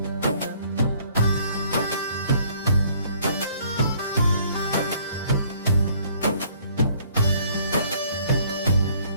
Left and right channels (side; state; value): both; inverted; correlation -0.61